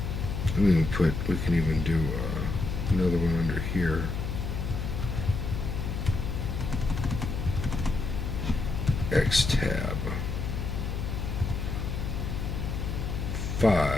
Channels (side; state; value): left; noise; hum, 3 dB below the sound